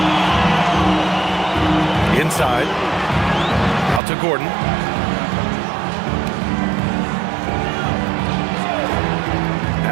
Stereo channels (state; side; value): drops out; left; at 4.0 s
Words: Inside. Out to Gordon.